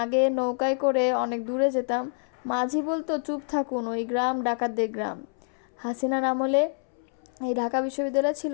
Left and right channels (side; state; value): right; silent; 60 dB below the other